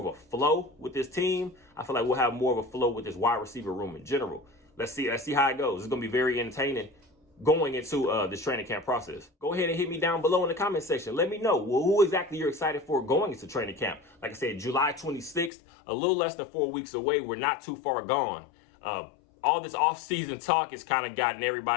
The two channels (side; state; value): right; drops out; at 15.5 s